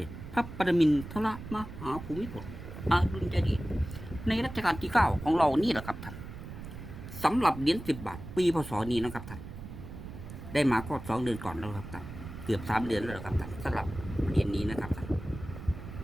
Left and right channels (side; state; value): right; noise; rumble, 11 dB below the sound